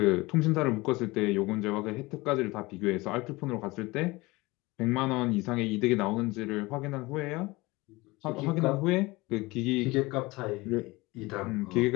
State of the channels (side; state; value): right; quieter; 22.1 dB